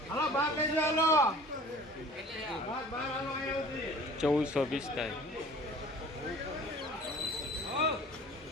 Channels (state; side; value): normal; both; correlation 0.46